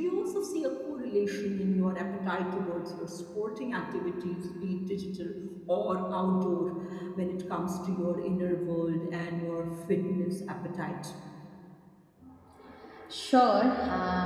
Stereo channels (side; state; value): both; identical; correlation 1.00